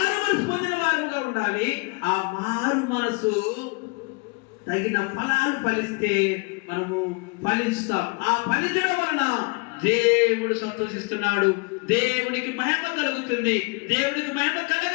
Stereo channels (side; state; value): right; quieter; 29.6 dB